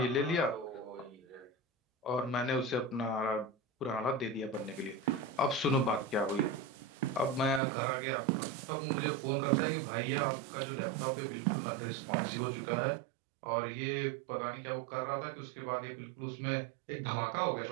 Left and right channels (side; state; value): left; drops out; at 7.6 s